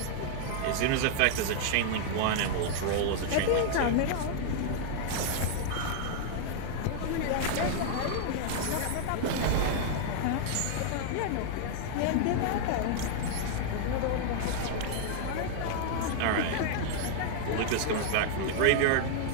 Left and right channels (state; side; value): different; both; correlation -0.01